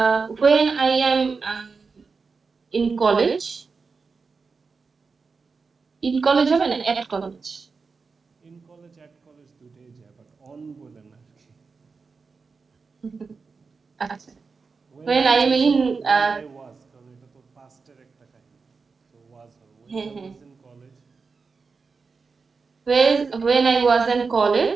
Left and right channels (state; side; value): quieter; left; 4.7 dB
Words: when I am in college, in college হবে না at college. In college, at college দুইটাই যায়, but on বলে না আর কি। আচ্ছা, When when I I am was in when I was কারণ এটা তো পাস্টের একটা কাহিনী, তো was হবে when হ্যাঁ I হ্যাঁ was in college। when I was in